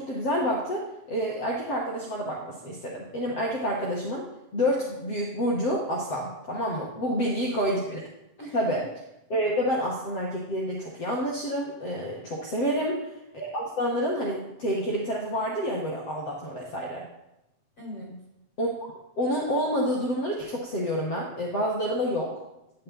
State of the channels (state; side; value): late; right; 7.7 ms